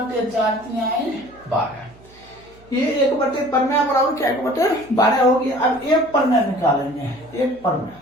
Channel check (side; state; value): right; noise; hum, 26 dB below the sound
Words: 3 12। ये 1 परमेय बराबर क्या 1/12 हो गया। अब एक परमेय निकालेंगे